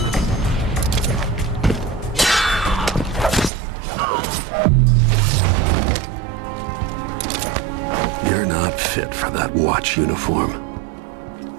You're not fit for that watch uniform.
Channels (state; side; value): drops out; left; at 3.5 s